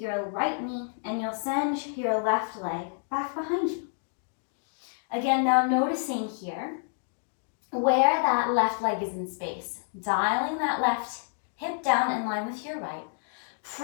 right knee and you'll send your left leg back behind you. Again, now noticing here where that left leg is in space, dialing that left hip down in line with your right,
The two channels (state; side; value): silent; right; 59 dB below the other